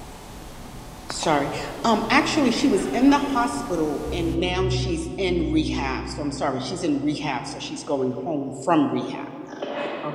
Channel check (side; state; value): both; identical; correlation 1.00